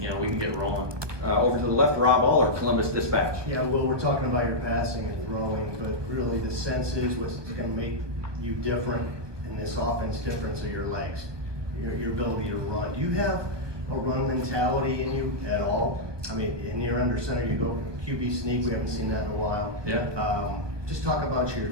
you know, we can get rolling. Over to the left, Rob Aller, Columbus Dispatch. Yeah, Will, we're talking about your passing and throwing, but really the sense is what's going to make you different in this offense difference are your legs, your ability to run. Do you have a run mentality in you at all? I mean, in your under center, you go QB sneak. We haven't seen that in a while. Yeah. Just talk about if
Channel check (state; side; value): late; left; 1.2 ms